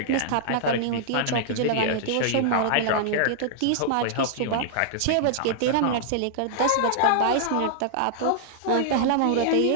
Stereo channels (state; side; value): different; both; correlation -0.02